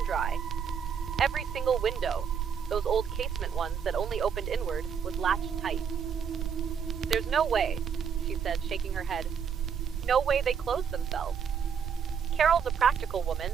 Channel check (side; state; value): left; quieter; 7.2 dB